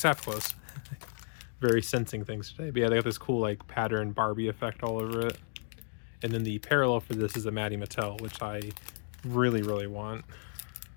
that close. Very sensing things today. But yeah, they got this cool like pattern Barbie effect all over it. And then the parallel for this is a Maddie Mattel, which I really, really want.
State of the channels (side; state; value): right; silent; digital silence